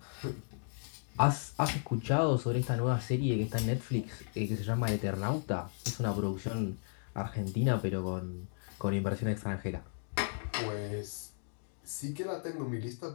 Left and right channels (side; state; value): right; silent; digital silence